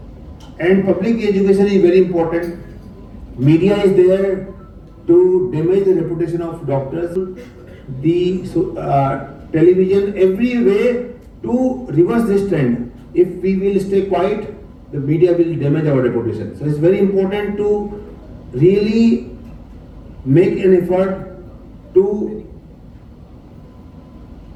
And public education is very important. Media is there to damage the reputation of doctors. The television, every way to reverse this trend. If we will stay quiet, the media will damage our reputation. So it's very important to really make an effort to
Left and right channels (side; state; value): both; identical; correlation 1.00